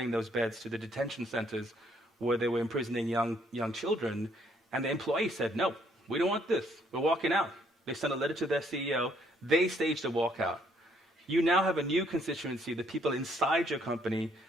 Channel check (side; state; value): both; normal; correlation 0.67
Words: those beds to the detention centers where they were imprisoning young children. And the employee said, no, we don't want this. We're walking out. They sent a letter to their CEO. They staged a walkout. You now have a new constituency, the people inside your company,